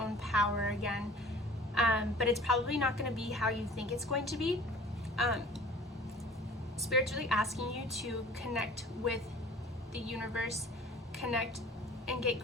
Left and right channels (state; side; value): normal; both; correlation 0.47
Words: power again, but it's probably not going to be how you think it's going to be. Spirit's really asking you to connect with the universe, connect and get